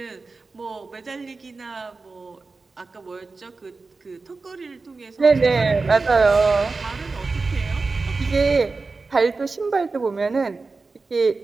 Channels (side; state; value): left; quieter; 4.0 dB